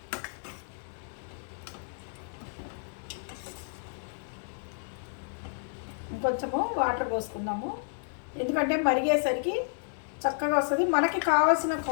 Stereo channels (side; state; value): right; silent; digital silence